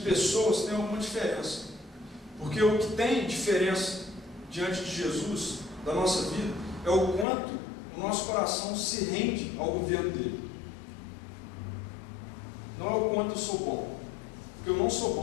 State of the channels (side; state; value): right; drops out; at 7.2 s